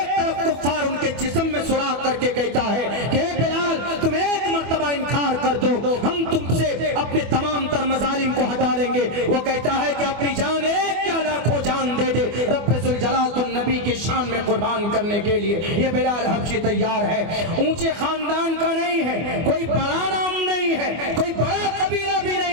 तरफ कुफ्फार उनके जिस्म में सुराख करके कहता है कि बिलाल तुम एक मर्तबा इनकार कर दो, हम तुमसे अपने तमाम तर मजालिम को हटा लेंगे। वो कहता है कि अपनी जान एक क्या लाखों जान दे दे, रब्बे जुल जलाल तो नबी की शान में कुर्बान करने के लिए ये बिलाल हबशी तैयार है। ऊंचे खानदान का नहीं है, कोई बड़ा नाम नहीं है, कोई बड़ा कबीला भी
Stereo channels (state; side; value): late; left; 24 ms